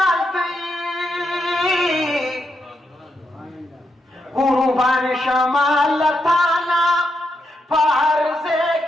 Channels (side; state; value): both; normal; correlation 0.82